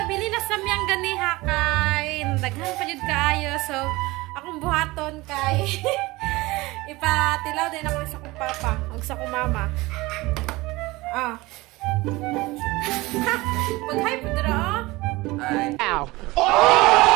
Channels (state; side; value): quieter; left; 21.2 dB